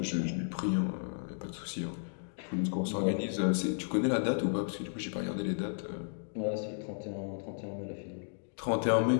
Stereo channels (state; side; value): silent; right; digital silence